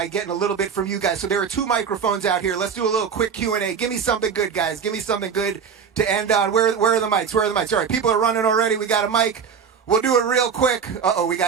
getting a little bit from you guys. So there are 2 microphones out here. Let's do a little quick Q&A. Give me something good, guys. Give me something good to end on. Where are the mics? Where are the mics? All right, people are running already. We got a mic. We'll do it real quick. Uh-oh, we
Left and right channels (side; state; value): left; quieter; 6.7 dB